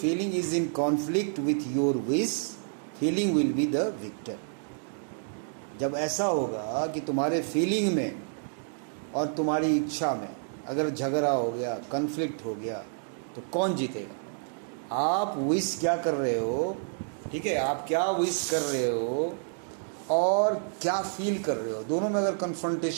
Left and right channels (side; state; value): left; silent; digital silence